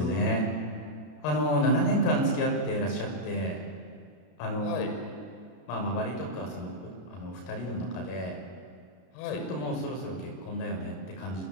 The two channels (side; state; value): right; late; 33 ms